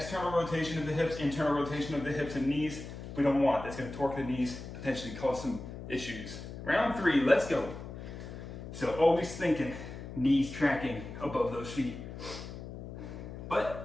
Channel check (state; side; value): noise; left; hum, 10 dB below the sound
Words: rotation of the hips, internal rotation of the hips and knees, we don't want. That's going to torque the knees, potentially cause some issues. Round 3, let's go. So always thinking knees tracking above those feet.